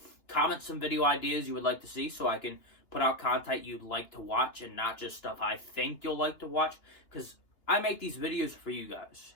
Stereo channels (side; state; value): right; late; 2.9 ms